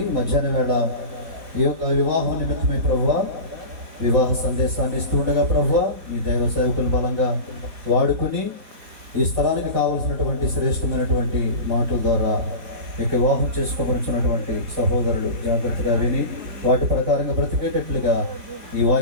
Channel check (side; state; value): left; late; 4.5 ms